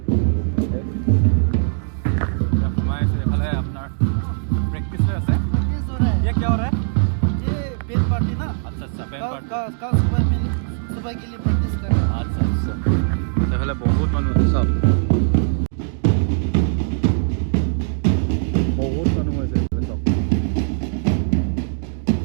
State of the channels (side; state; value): left; silent; digital silence